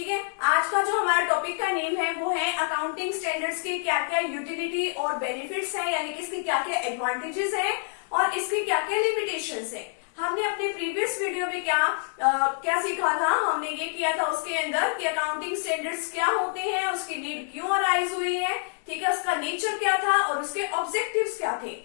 है। आज का जो हमारा टॉपिक का नेम है वो है अकाउंटिंग स्टैंडर्ड्स के क्या क्या यूटिलिटी और बेनिफिट्स हैं, यानी कि इसके क्या क्या एडवांटेजेस हैं और इसकी क्या क्या लिमिटेशंस हैं। हमने अपने प्रीवियस वीडियो में क्या सीखा था, हमने ये किया था उसके अंदर कि अकाउंटिंग स्टैंडर्ड्स क्या होते हैं, उसकी नीड क्यों अराइज हुई है, ठीक है, उसका नेचर क्या था और उसके ऑब्जेक्टिव्स क्या थे।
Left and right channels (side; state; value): right; silent; digital silence